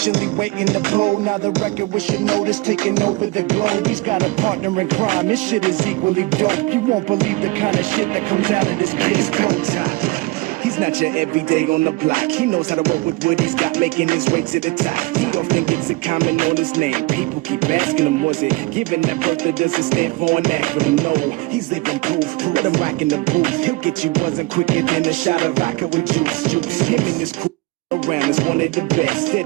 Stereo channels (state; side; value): quieter; left; 22.2 dB